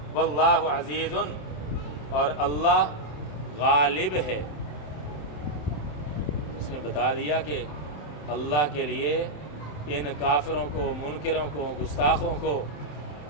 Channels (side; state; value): right; late; 27 ms